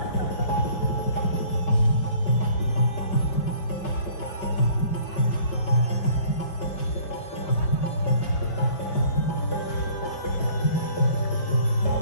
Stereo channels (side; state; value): right; late; 5.3 ms